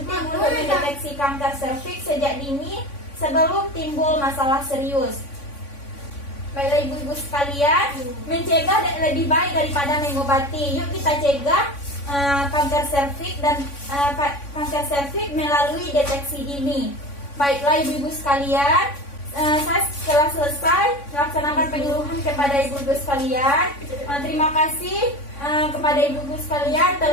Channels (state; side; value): late; right; 3.5 ms